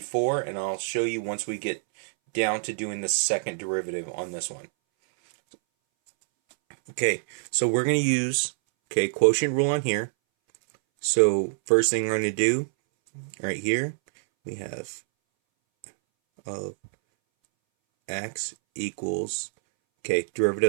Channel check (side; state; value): left; silent; 61 dB below the other